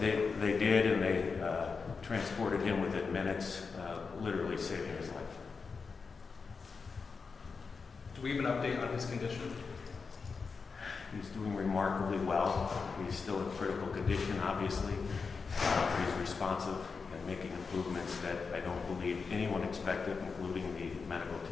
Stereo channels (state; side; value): quieter; right; 5.0 dB